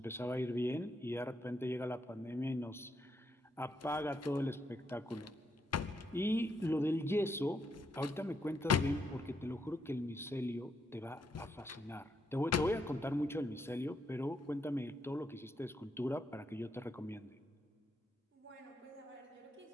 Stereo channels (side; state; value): both; normal; correlation 0.78